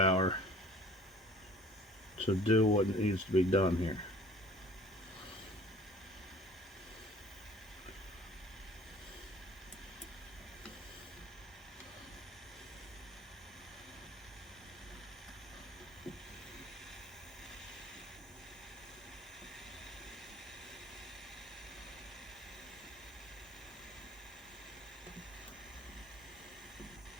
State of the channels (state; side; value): normal; both; correlation 0.50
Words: to do what needs to be done here.